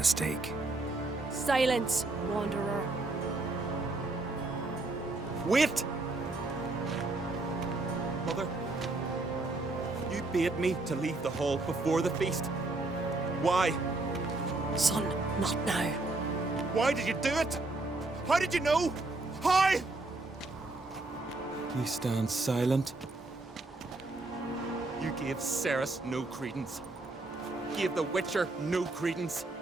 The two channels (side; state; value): left; quieter; 3.1 dB